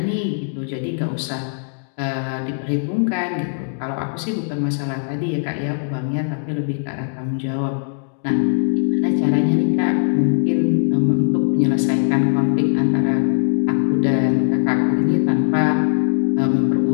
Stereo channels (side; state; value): right; silent; digital silence